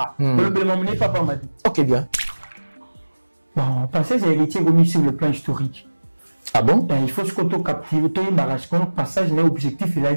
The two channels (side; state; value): both; inverted; correlation -1.00